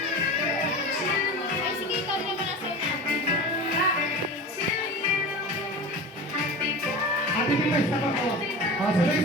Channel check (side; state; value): both; normal; correlation 0.31